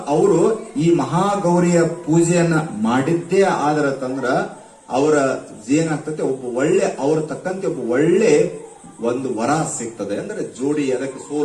ಅವರು ಈ ಮಹಾಗೌರಿಯ ಪೂಜೆಯನ್ನ ಮಾಡಿದ್ದೇ ಆದ್ರ ತಂದ್ರ ಅವರ ಏನಾಗ್ತದೆ, ಒಬ್ಬ ಒಳ್ಳೆ, ಅವ್ರ ತಕ್ಕಂತೆ ಒಬ್ಬ ಒಳ್ಳೆ ಒಂದು ವರ ಸಿಗ್ತದೆ. ಅಂದ್ರೆ ಜೋಡಿ, ಅದಕ್ಕೆ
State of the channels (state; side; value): identical; both; correlation 1.00